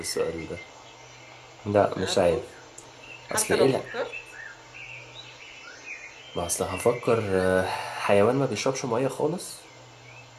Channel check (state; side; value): identical; both; correlation 1.00